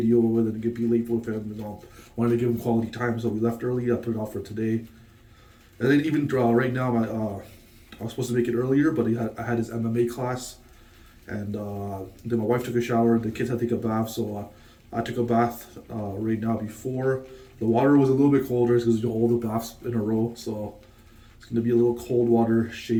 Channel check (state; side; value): identical; both; correlation 1.00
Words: with it and be late with him. Wanted to give him quality time, so we left early. I put it off for today, and then even right now, I was supposed to make it earlier, but I had his MMA class, and then my wife took a shower. The kids had to take a bath, so I took a bath right now before. The water was a little bit colder because all the baths in a row, so it's gonna be a little cold water